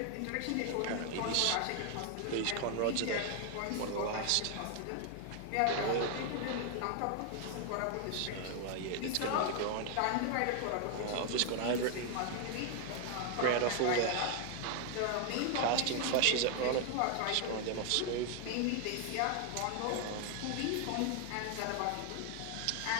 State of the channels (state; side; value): different; both; correlation 0.00